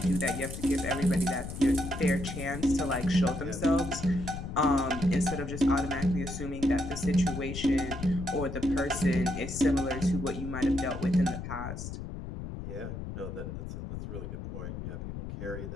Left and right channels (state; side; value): noise; left; rumble, 7 dB below the sound